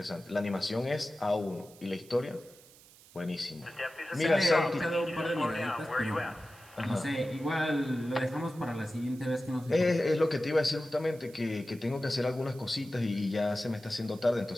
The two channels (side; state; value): right; noise; hiss, 23 dB below the sound